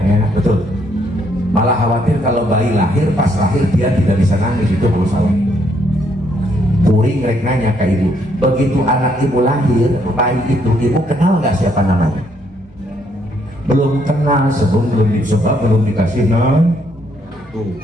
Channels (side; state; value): both; normal; correlation 0.71